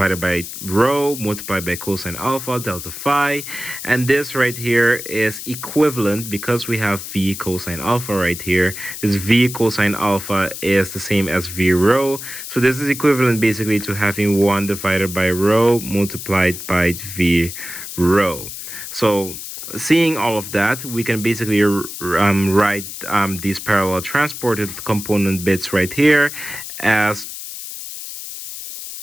by rho multiplied by cosine alpha delta phi, and this right here is equivalent because we have v cosine alpha right here. This v cosine alpha is the same as v rho, so this is equivalent basically to having 1 divided by rho multiplied by v rho. So seeing all of that, we can basically write these parallel transported component bits right here as,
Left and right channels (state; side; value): noise; left; hiss, 9 dB below the sound